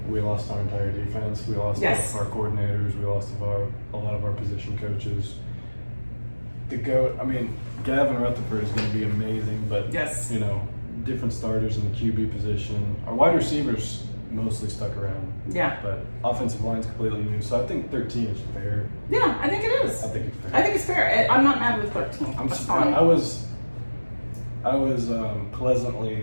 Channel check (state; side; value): inverted; both; correlation -1.00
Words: we lost our entire defense. We lost our coordinators. We lost a lot of our position coaches. The GOAT, Gavin Rutherford is going to be amazing, but different starters in the QB position. Our wide receivers mostly stuck around. Yeah. But offensive line's completely new, so I think 13 is fair. Yeah, I think it is. I think it's fair. I think it's fair. I'm not mad with 13. I'm That's surprised. fine. I was